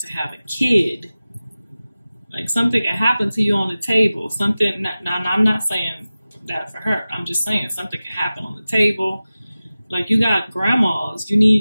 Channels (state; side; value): inverted; both; correlation -0.96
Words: have a kid. Like, something can happen to you on the table. Something, now I'm not saying that for her. I'm just saying something can happen on the table. Like, you got grandmas. You